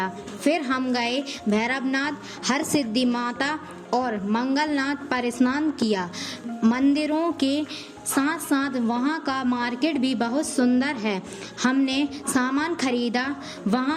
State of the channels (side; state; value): both; identical; correlation 1.00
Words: फिर हम गए भैरवनाथ, हरसिद्धि माता और मंगलनाथ पर स्नान किया। मंदिरों के साथ साथ वहाँ का मार्केट भी बहुत सुंदर है। हमने सामान खरीदा।